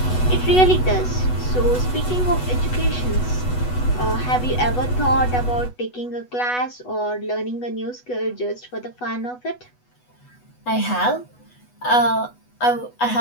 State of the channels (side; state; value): right; late; 8.1 ms